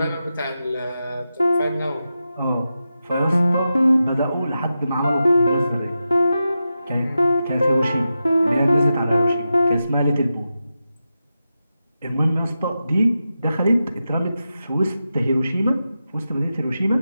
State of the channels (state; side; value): inverted; both; correlation -0.90